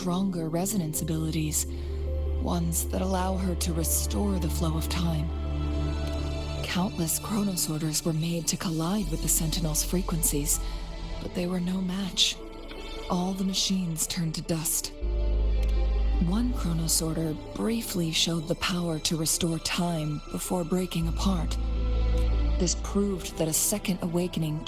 resonance abilities, ones that allow her to restore the flow of time. Countless chronosorters were made to collide with the Sentinel's frequencies, but they were no match. All the machines turned to dust. One chronosorter briefly showed the power to restore time before breaking apart. This proved that a second awakening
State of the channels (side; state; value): both; identical; correlation 1.00